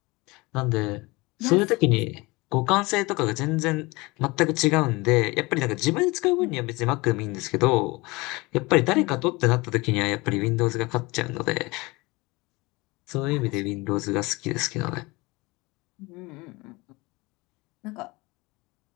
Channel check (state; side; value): quieter; right; 23.7 dB